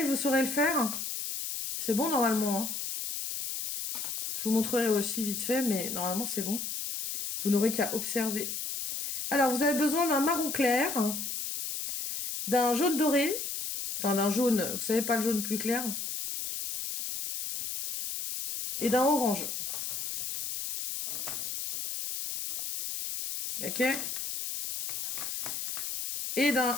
vous saurez le faire. C'est bon normalement. Hein, je vous montrerai aussi vite fait, mais normalement c'est bon. Vous n'aurez qu'à observer. Alors vous avez besoin d'un marron clair, d'un jaune doré, enfin d'un jaune, vous savez pas le jaune plus clair, et d'un orange. Ok? Et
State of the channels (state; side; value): noise; left; hiss, 4 dB below the sound